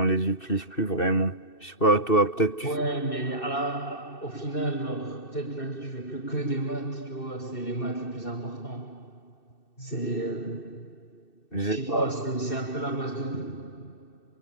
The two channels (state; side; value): late; right; 2.6 ms